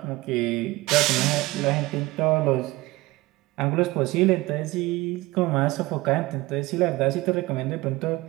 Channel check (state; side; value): quieter; left; 19.9 dB